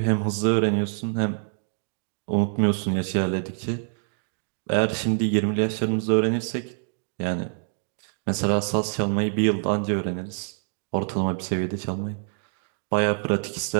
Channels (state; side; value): silent; left; digital silence